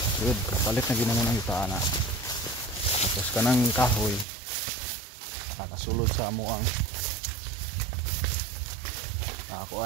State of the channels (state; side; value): drops out; left; at 4.2 s